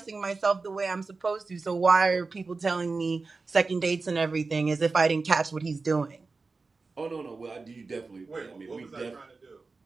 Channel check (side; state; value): left; quieter; 4.0 dB